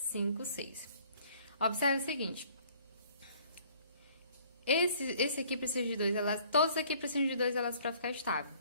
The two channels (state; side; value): inverted; both; correlation -0.56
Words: 6. Observe o seguinte. Esse aqui precisa de 2 elétrons. Todos aqui precisam de 2 elétrons para ficar estável.